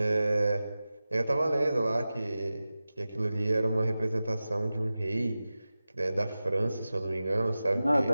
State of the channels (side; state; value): both; inverted; correlation -0.95